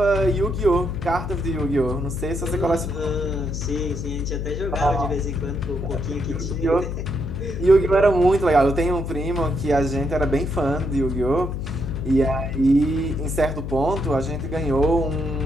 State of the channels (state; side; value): noise; left; hum, 4 dB below the sound